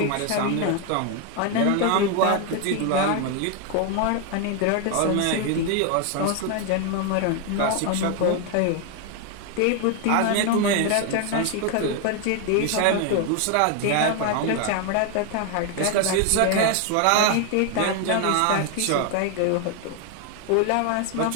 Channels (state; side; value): different; both; correlation 0.01